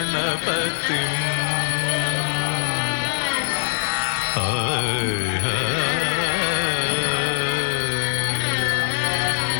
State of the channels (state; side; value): silent; right; digital silence